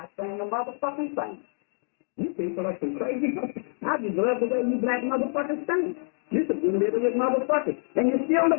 saying a motherfucking thing. You people are some crazy fuckers. I just love the way you black motherfuckers think. You're some illiterate motherfuckers. And you're still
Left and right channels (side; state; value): right; silent; 60 dB below the other